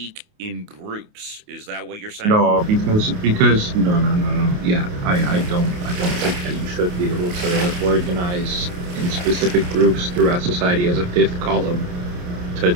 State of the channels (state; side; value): late; left; 28 ms